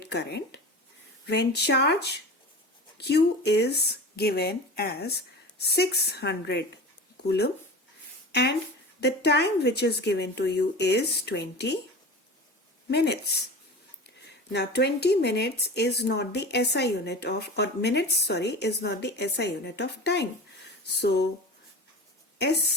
current when charge Q is given as 600 coulomb and the time which is given to you is 20 minutes. Now 20 minutes is not the SI unit of, is not the SI unit of time. So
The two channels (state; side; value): normal; both; correlation 0.32